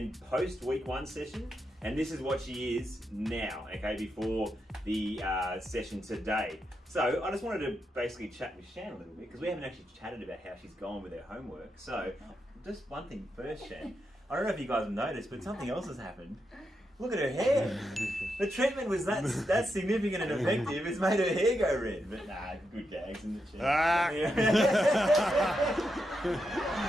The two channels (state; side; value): normal; both; correlation 0.85